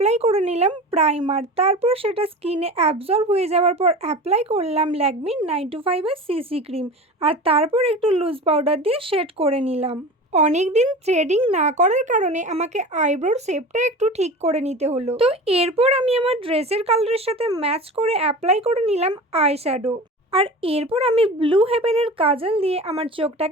করে নিলাম প্রাইমার, তারপর সেটা স্কিনে অ্যাবজর্ব হয়ে যাওয়ার পর অ্যাপ্লাই করলাম ল্যাকমি 925 এর সিসি ক্রিম, আর তারপর একটু লুজ পাউডার দিয়ে শেড করে নিলাম। অনেকদিন থ্রেডিং না করার কারণে আমাকে আইব্রোর শেপটা একটু ঠিক করে নিতে হলো। তো এরপর আমি আমার ড্রেসের কালারের সাথে ম্যাচ করে অ্যাপ্লাই করে নিলাম আই শ্যাডো। আর এরপর আমি ব্লু হেভেনের কাজল দিয়ে আমার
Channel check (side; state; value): both; normal; correlation 0.34